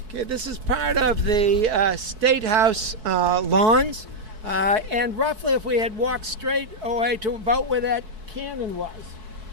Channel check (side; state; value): left; late; 4.6 ms